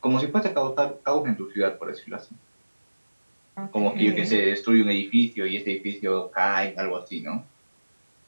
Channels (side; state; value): both; inverted; correlation -1.00